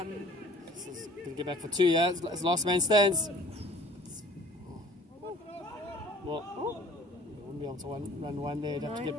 This is going to get back for 2, yeah? It's last man stands. Well, they wouldn't be able to run one there. They'd have to get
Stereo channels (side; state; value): both; normal; correlation 0.50